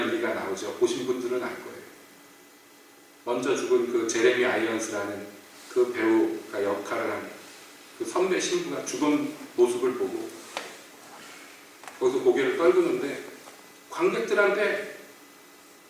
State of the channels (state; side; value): identical; both; correlation 1.00